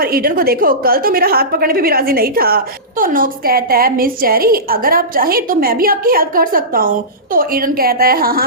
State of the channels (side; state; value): both; normal; correlation -0.20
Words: ईडन को देखो कल तो मेरा हाथ पकड़ने पे भी राजी नहीं था। तो नोक्स कहता है मिस चेरी अगर आप चाहें तो मैं भी आपकी हेल्प कर सकता हूँ। तो ईडन कहता है